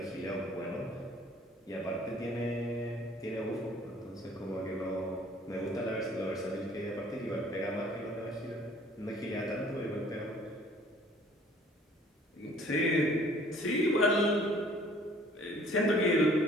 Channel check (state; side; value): normal; both; correlation 0.55